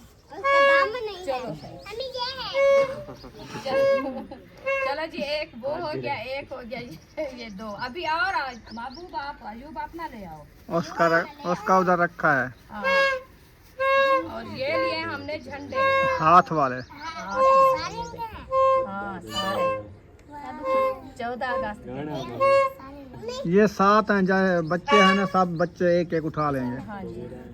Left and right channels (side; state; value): both; identical; correlation 1.00